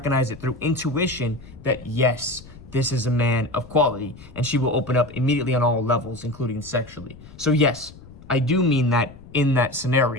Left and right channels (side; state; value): left; noise; rumble, 19 dB below the sound